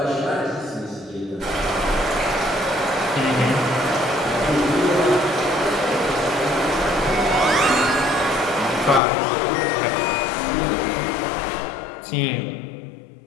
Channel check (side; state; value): right; drops out; at 9.0 s